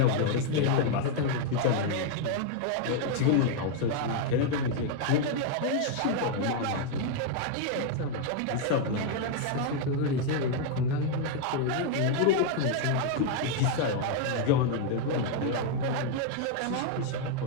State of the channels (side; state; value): both; different; correlation 0.00